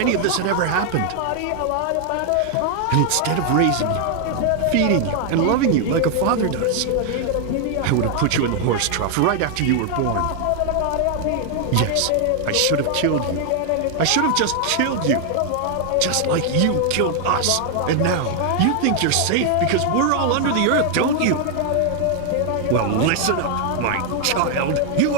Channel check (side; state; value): both; different; correlation 0.00